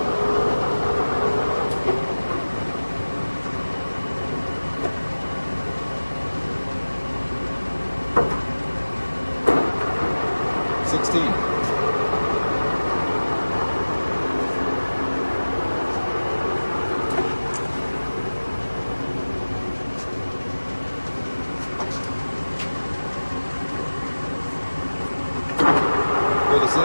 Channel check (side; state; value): both; inverted; correlation -1.00